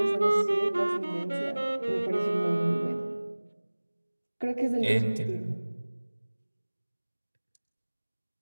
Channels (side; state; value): both; inverted; correlation -1.00